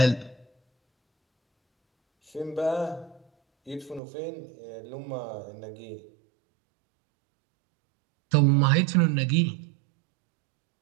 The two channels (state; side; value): drops out; left; at 4.0 s